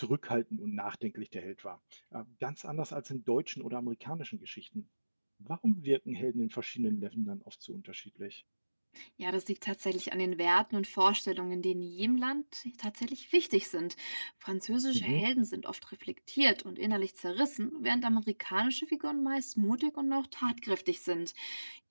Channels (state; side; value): inverted; both; correlation -1.00